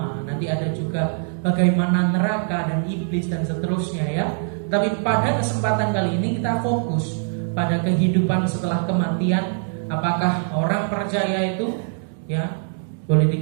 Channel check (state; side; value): silent; left; 58 dB below the other